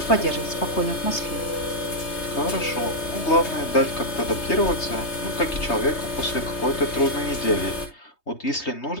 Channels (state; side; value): late; right; 3.2 ms